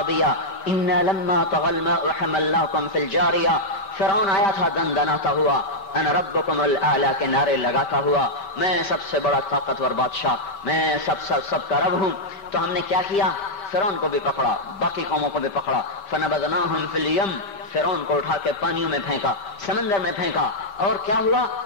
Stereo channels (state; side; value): late; right; 5.4 ms